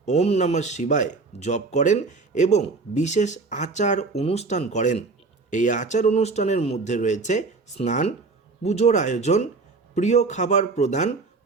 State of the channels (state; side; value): quieter; left; 4.0 dB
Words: ওম নমঃ শিবায় জপ করেন এবং বিশেষ আচার অনুষ্ঠান করেন। এই আচার অনুষ্ঠানের মধ্যে রয়েছে স্নান, পুজোর আয়োজন, প্রিয় খাবার প্রদান,